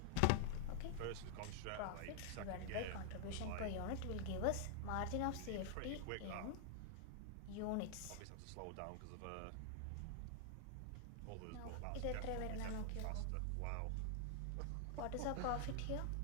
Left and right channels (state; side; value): different; both; correlation 0.00